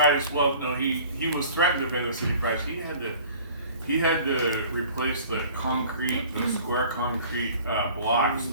Well, no, he was threatened to pay the city price. He had to replace the square concrete blocks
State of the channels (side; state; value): both; inverted; correlation -0.47